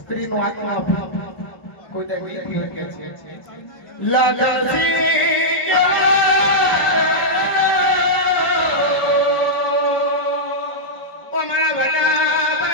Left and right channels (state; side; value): late; right; 1.1 ms